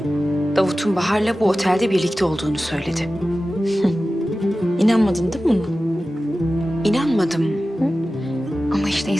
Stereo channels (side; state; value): both; normal; correlation 0.95